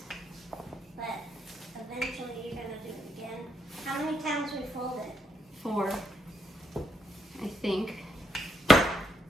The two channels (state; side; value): normal; both; correlation 0.77